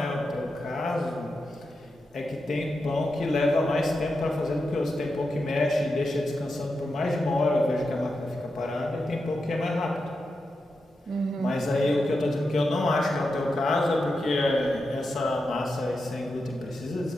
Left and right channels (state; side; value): normal; both; correlation 0.88